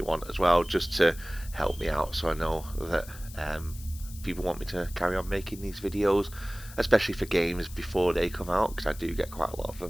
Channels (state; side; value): noise; left; hiss, 17 dB below the sound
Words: want as well, just to help me out so I know that people want me to carry on making these videos, especially for games before they come out, because I do get quite a lot of